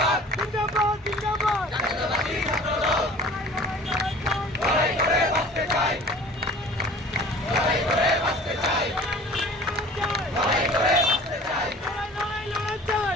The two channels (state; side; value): normal; both; correlation 0.45